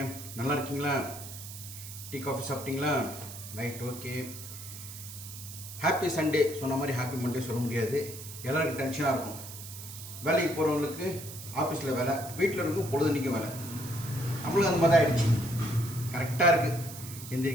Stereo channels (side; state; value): right; noise; hiss, 12 dB below the sound